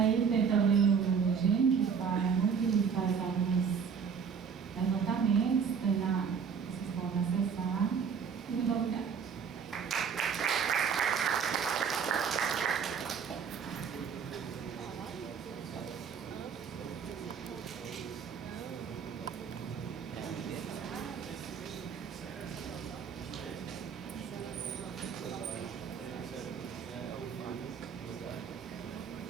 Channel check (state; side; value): quieter; left; 6.5 dB